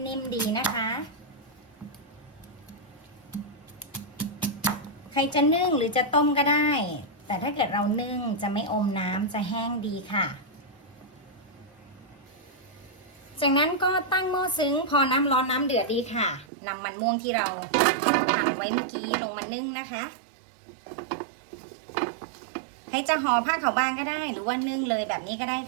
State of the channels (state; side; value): drops out; left; at 16.4 s